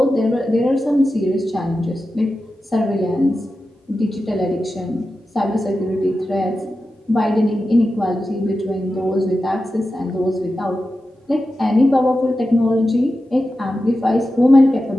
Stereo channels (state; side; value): normal; both; correlation 0.92